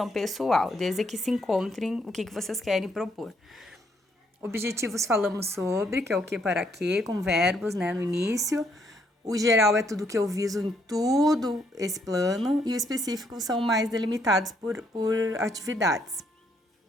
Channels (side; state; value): both; normal; correlation 0.72